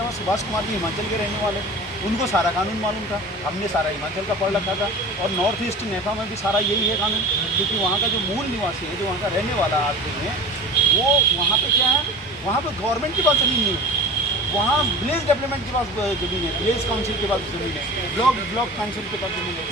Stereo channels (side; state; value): both; normal; correlation 0.36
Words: हुआ, सुभाष कुमार जी हिमाचल के रहने वाले, उनको सारा कानून मालूम था, हमने सारा हिमाचल का पढ़ रखा था। और नॉर्थ ईस्ट नेफा में भी सारा यही है कानून, क्योंकि वहाँ का जो मूल निवासी है, जो वहाँ का रहने वाला आदमी है, वो वहाँ पे क्या है, वहाँ पे गवर्नमेंट के पास ज़मीन नहीं है, वहाँ विलेज डेवलपमेंट के पास ज़मीन है, विलेज काउंसिल के पास ज़मीन है, ब्लॉक काउंसिल के पास ज़मीन है,